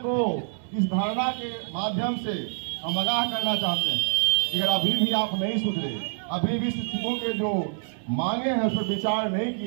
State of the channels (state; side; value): silent; left; 61 dB below the other